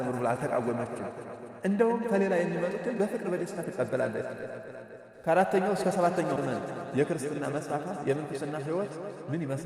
ብላ አልተቃወመችም። እንደውም ከሌላ የሚመጡትን በፍቅር በደስታ ትቀበላለች። ከአራተኛው እስከ ሰባተኛው ዘመን የክርስትና መስፋፋት የምንኩስና ሕይወት ምን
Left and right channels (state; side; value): identical; both; correlation 1.00